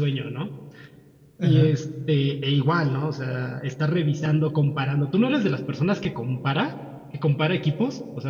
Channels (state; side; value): identical; both; correlation 1.00